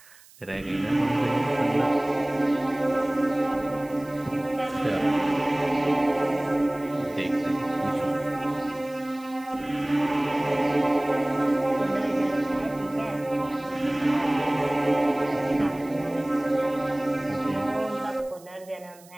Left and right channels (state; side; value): noise; right; hiss, 24 dB below the sound